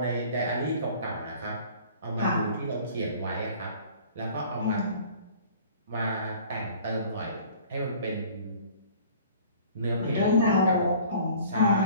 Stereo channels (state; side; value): inverted; both; correlation -0.49